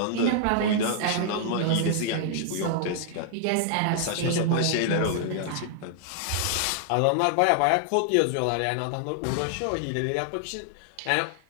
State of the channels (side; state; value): both; different; correlation -0.01